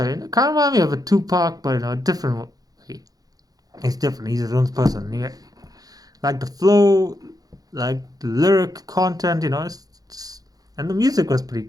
it kind of reminds me of a Tupac, but in a different way. He's different. He's his own person. Yeah. Like the flow, like the lyric content, you know, and the music was pretty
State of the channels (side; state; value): left; late; 0.18 ms